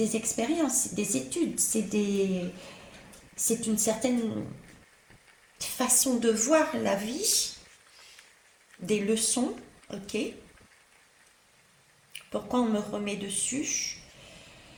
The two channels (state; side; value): identical; both; correlation 1.00